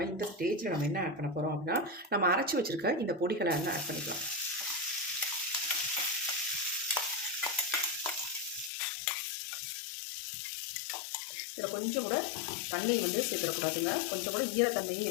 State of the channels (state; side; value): drops out; right; at 8.7 s